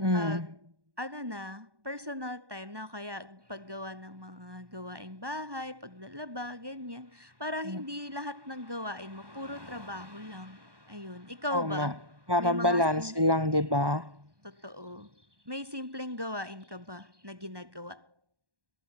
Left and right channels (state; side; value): late; left; 1.2 ms